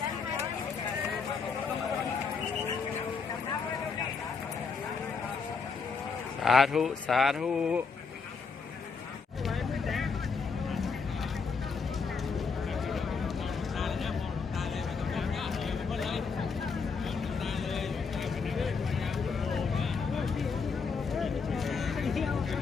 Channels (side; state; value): right; quieter; 5.2 dB